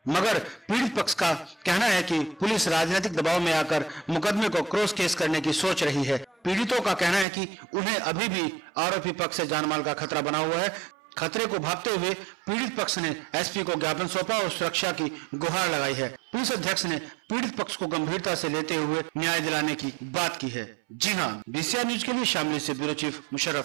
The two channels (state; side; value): drops out; left; at 7.2 s